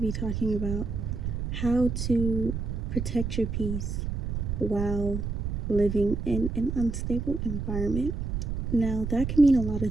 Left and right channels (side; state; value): right; noise; rumble, 3 dB below the sound